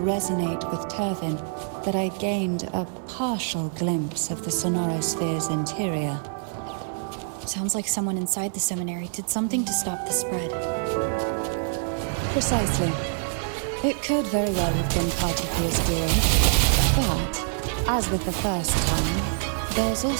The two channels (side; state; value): left; silent; digital silence